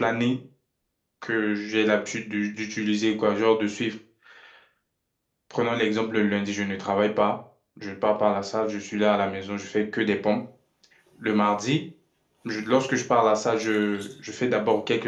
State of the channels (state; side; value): identical; both; correlation 1.00